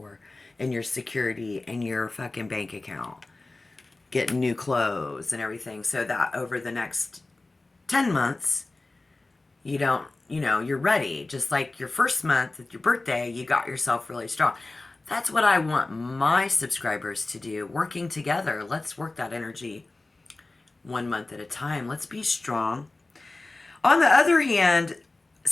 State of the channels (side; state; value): right; quieter; 3.2 dB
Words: and your security and your fucking bank account. Getting new clothes and everything, so that over the next 10 months, you don't, you're ready. Just like your first month at your birthday, you got yourself really strong. That's what I want my subscribers to do. Working together. Let's work that energy 1 month at a time. Let's be strong. On the other hand,